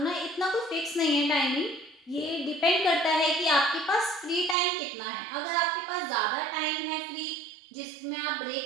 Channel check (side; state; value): left; drops out; at 4.5 s